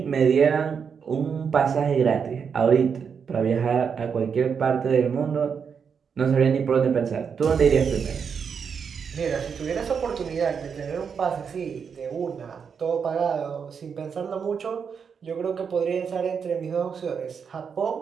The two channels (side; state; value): left; quieter; 6.5 dB